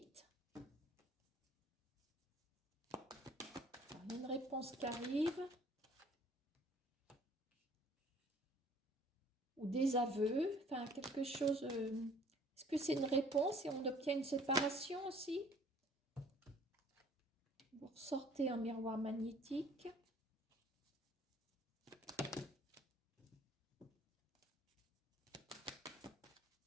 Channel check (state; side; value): normal; both; correlation 0.55